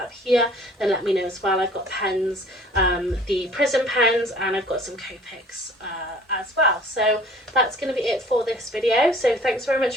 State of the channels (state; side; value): normal; both; correlation 0.52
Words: here, then let me know as well. I've got pens, the Prism pens, and I've got some Copics as well. So that's going to be it for this video. So thanks very